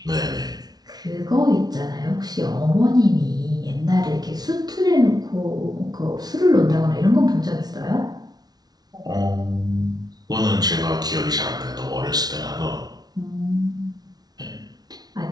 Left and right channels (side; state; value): left; late; 0.19 ms